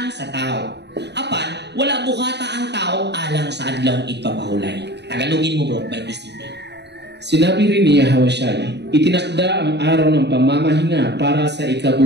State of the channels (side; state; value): left; late; 0.50 ms